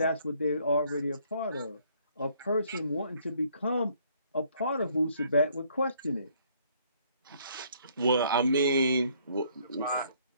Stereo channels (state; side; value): inverted; both; correlation -0.64